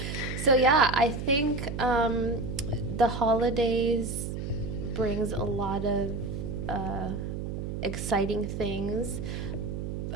So, yeah, I think the holidays brings a lot of exciting things.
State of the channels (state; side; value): noise; right; hum, 5 dB below the sound